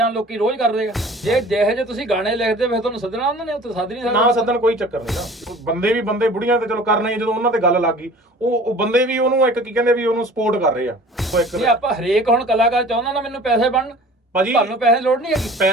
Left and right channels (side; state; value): both; normal; correlation 0.45